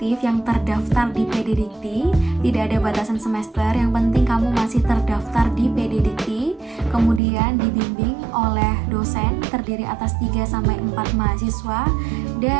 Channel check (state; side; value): drops out; left; at 7.2 s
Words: yang terdaftar di PD Dikti, tidak ada batasan semester, yang penting kamu masih terdaftar di PD Dikti, kemudian dibimbing oleh dosen terdiri atas 3-4 mahasiswa,